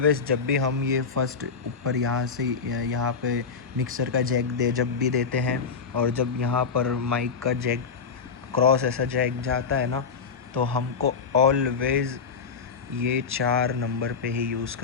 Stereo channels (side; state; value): right; quieter; 5.6 dB